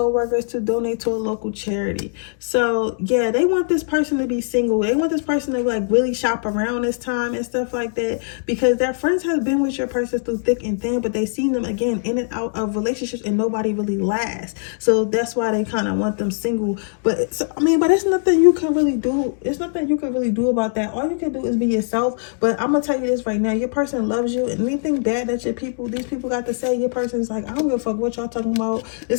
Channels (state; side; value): silent; right; digital silence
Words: to donate to a local charity. So yeah, they want this person to be single. They want this person to like really shop around this time and stuff like that, because their friends have been with your person through thick and thin, but they've seen them again in and out of relationships and nobody really lasts. So that's why they kind of want them single. But it's nothing you can really do. It's nothing you can really do about that. All you can do is be yourself. But I'm gonna tell you this right now, your person loves you, and anything bad that these people got to say, your person's like, I don't give a fuck what y'all talking about.